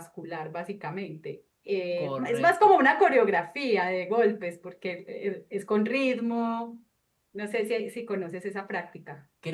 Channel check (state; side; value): identical; both; correlation 1.00